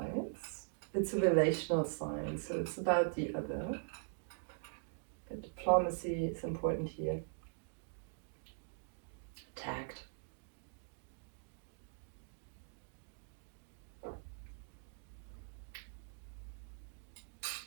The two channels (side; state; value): left; silent; digital silence